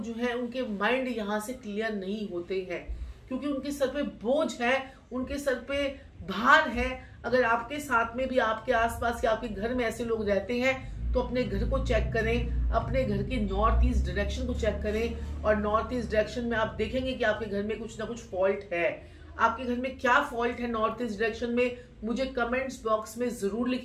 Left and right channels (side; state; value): both; identical; correlation 1.00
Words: जो है उनके माइंड यहाँ से क्लियर नहीं होते हैं क्योंकि उनके सर पे बोझ है, उनके सर पे भार है। अगर आपके साथ में भी आपके आसपास या आपके घर में ऐसे लोग रहते हैं तो अपने घर को चेक करें, अपने घर की नॉर्थ ईस्ट डायरेक्शन को चेक करें और नॉर्थ ईस्ट डायरेक्शन में आप देखेंगे कि आपके घर में कुछ ना कुछ फॉल्ट है। आपके घर में क्या फॉल्ट है नॉर्थ ईस्ट डायरेक्शन में, मुझे कमेंट्स बॉक्स में जरूर